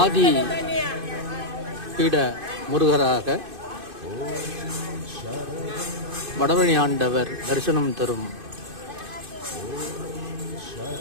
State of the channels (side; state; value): left; late; 2.5 ms